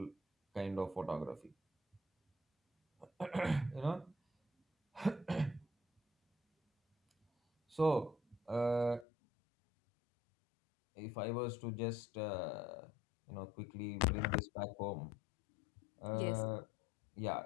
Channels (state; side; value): drops out; right; at 9.1 s